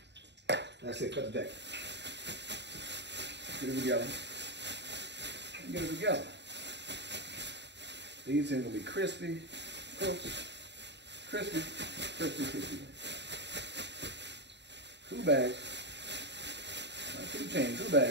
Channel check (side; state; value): left; late; 0.51 ms